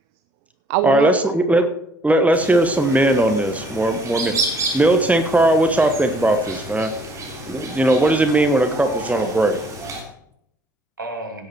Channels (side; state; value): both; normal; correlation 0.63